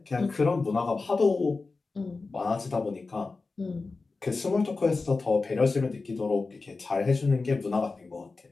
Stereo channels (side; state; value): right; quieter; 3.9 dB